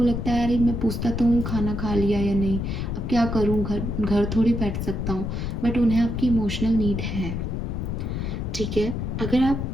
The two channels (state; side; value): noise; left; rumble, 3 dB below the sound